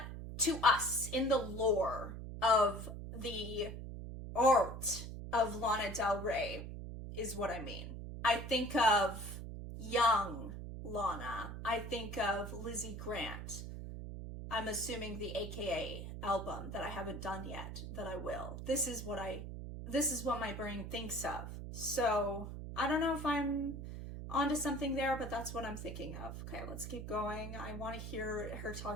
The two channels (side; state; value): right; noise; hum, 8 dB below the sound